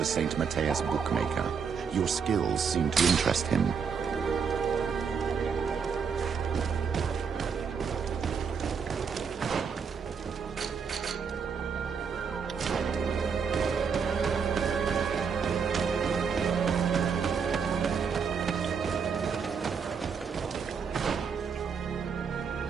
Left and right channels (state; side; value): quieter; left; 6.3 dB